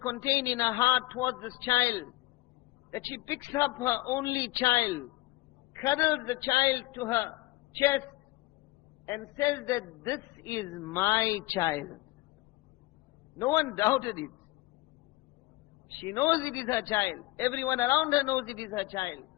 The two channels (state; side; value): quieter; right; 20.1 dB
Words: in her heart towards this child, that she picks up her only child, cuddles the child to her chest, and says that this is my child. No one doubted it. She knows it is her child. Everyone around her knows it is her child.